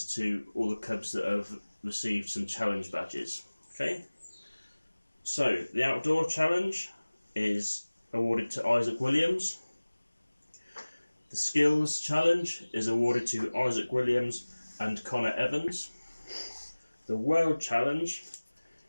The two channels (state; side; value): inverted; both; correlation -1.00